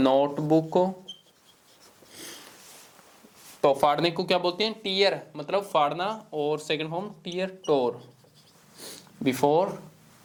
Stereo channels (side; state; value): both; identical; correlation 1.00